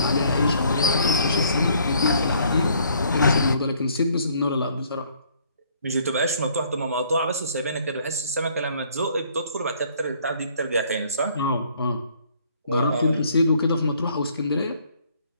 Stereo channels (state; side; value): inverted; both; correlation -0.63